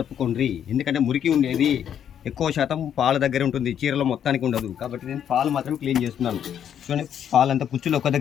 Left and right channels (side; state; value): right; quieter; 9.2 dB